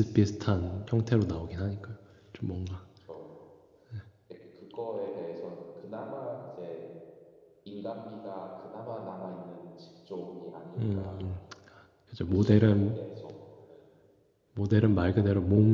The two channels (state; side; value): identical; both; correlation 1.00